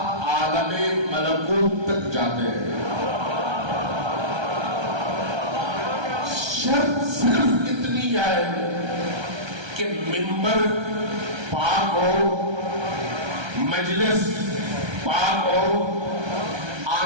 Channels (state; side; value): late; left; 1.3 ms